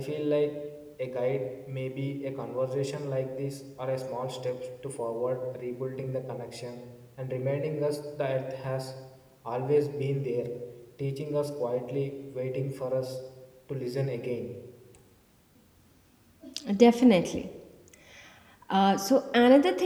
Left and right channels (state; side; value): identical; both; correlation 1.00